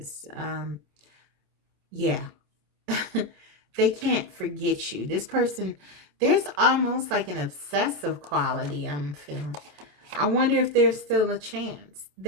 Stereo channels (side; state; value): left; late; 27 ms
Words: Yeah. They can't forget you. This person, there's almost like an obsessive quality I'm feeling. I wonder if there's still a chance.